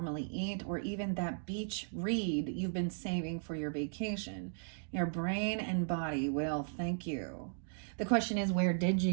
eat, or even that beach read you've been saving for your vacation. Your brain and body will thank you. The question is, where did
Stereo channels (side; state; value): left; silent; digital silence